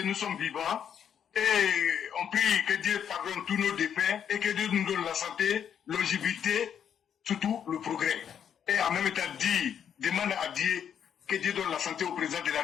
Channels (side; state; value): right; quieter; 8.6 dB